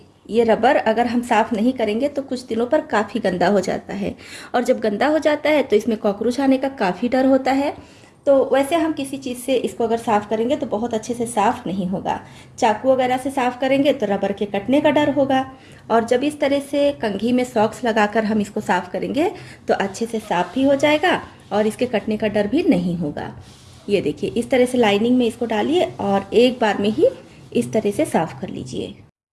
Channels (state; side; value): identical; both; correlation 1.00